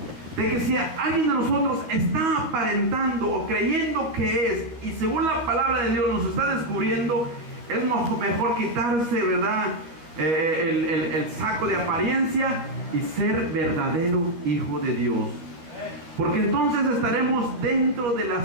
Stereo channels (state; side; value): late; left; 12 ms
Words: de que si alguien de nosotros está aparentando o creyendo que es, y según la palabra de Dios nos está descubriendo, es mejor quitarse, ¿verdad? El saco de apariencia y ser verdadero hijo de Dios. Porque entonces estaremos dentro de